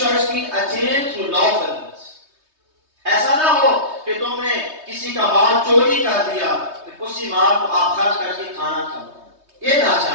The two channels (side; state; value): left; late; 3.2 ms